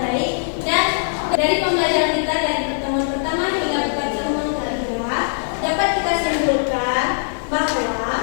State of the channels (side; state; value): right; silent; digital silence